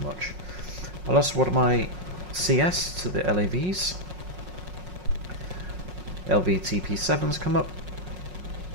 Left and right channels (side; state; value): left; late; 5.5 ms